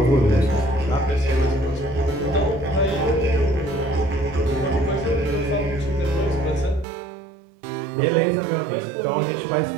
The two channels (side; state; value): left; drops out; at 6.9 s